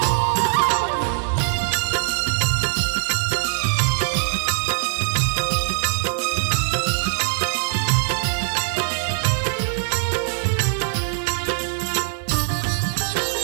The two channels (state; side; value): silent; left; digital silence